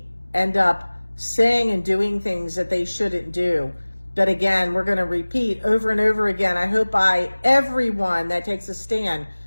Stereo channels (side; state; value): both; inverted; correlation -1.00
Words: end up saying and doing things that they shouldn't do. But again, we're going to repeat over and over again. I hope by everyone that takes a stand